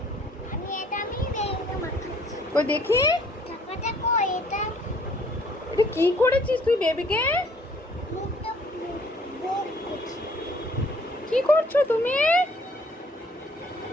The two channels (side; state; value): both; normal; correlation 0.60